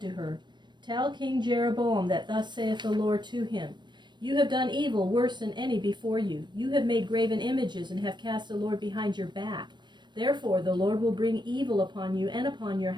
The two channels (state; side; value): late; left; 0.22 ms